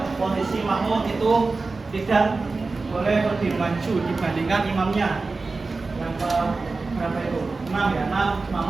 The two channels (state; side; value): quieter; left; 3.8 dB